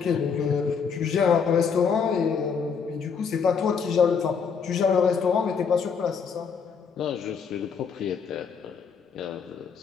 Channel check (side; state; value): right; quieter; 6.2 dB